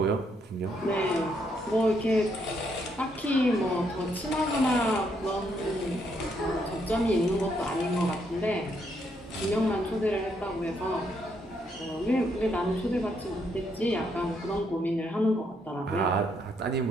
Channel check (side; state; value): both; normal; correlation 0.74